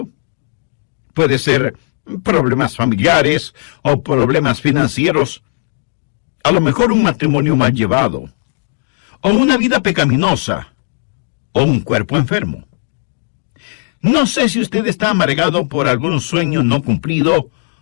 Puede ser problemas familiares o problemas financieros, a lo mejor un matrimonio mal llevado, o una vida pecaminosa, o un cuerpo enfermo. No sé si usted está amargado por algún sueño no cumplido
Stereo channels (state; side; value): silent; right; 63 dB below the other